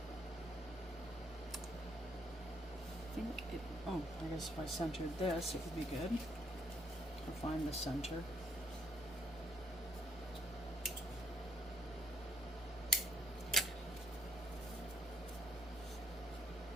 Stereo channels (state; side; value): normal; both; correlation 0.68